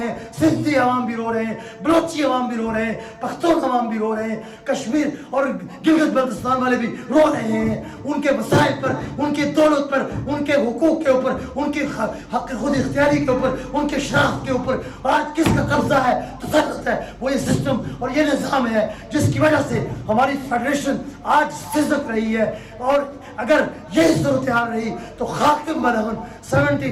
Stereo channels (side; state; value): both; identical; correlation 1.00